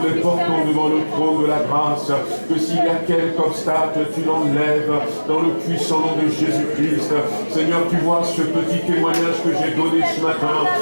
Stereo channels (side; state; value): both; inverted; correlation -1.00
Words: les portons devant le trône de la grâce, que s'il y a quelque obstacle, tu l'enlèves dans le puissant nom de Jésus-Christ. Seigneur, tu vois ce petit témoignage que j'ai donné ce matin.